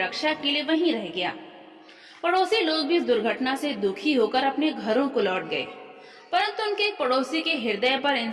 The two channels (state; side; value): identical; both; correlation 1.00